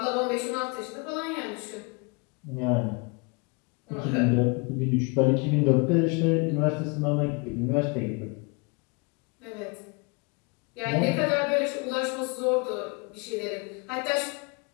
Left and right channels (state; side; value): quieter; right; 31.3 dB